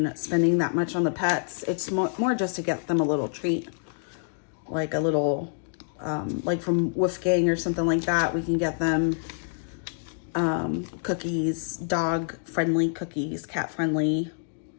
spending that much on the pets. It's more just to get them a little treat. Like a little, like from Wolfgang or something like that. We can get them cookies, dog-friendly cookies, cat-friendly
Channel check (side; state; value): right; silent; digital silence